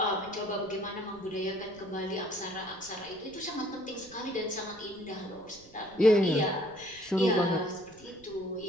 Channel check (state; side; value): noise; right; rumble, 24 dB below the sound